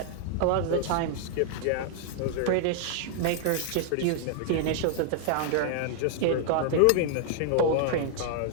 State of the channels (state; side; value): different; both; correlation 0.00